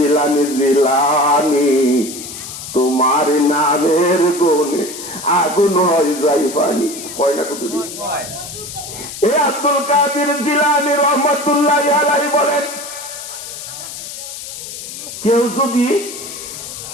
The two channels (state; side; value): noise; left; hiss, 10 dB below the sound